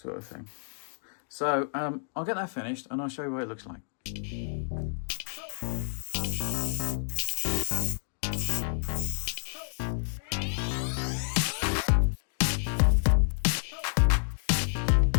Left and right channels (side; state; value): right; silent; digital silence